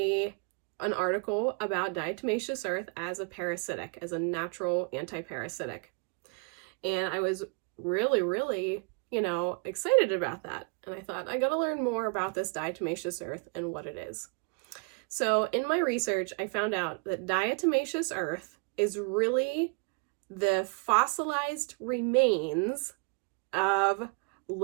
article about diatomaceous earth as a parasitic, as a natural anti-parasitic. And I was really excited about that. And I thought, I gotta learn more about this diatomaceous earth and what it is. So in my research, I found out that diatomaceous earth is really the fossilized remains of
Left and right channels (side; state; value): left; quieter; 33.1 dB